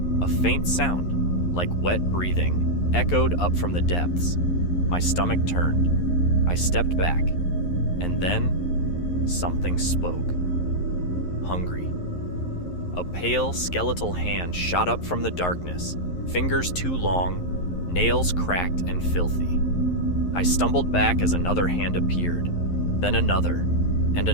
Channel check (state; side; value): late; right; 11 ms